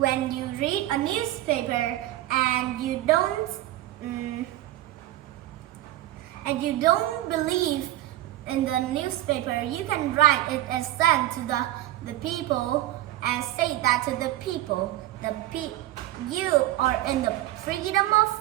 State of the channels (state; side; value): quieter; left; 15.1 dB